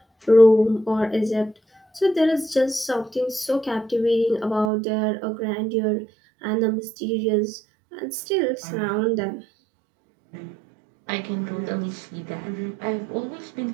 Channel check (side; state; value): left; drops out; at 4.7 s